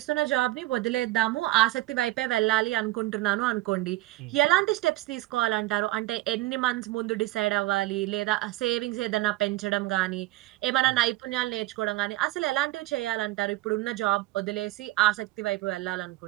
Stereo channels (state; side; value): quieter; left; 18.0 dB